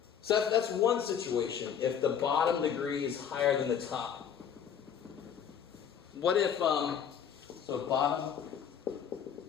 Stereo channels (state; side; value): quieter; right; 8.2 dB